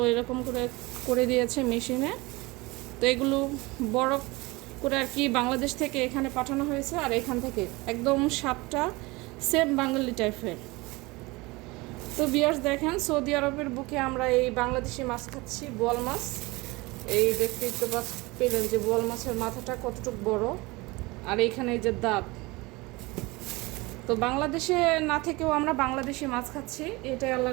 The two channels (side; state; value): left; quieter; 23.3 dB